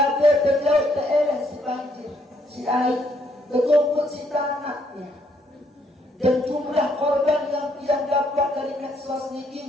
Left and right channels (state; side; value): normal; both; correlation 0.71